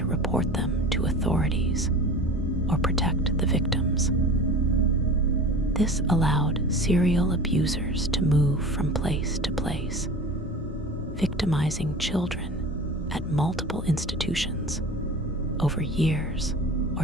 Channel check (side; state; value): both; normal; correlation 0.36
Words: report them to authorities or protect the victims. This allowed serial abusers to move from place to place, victimizing children at multiple institutions over years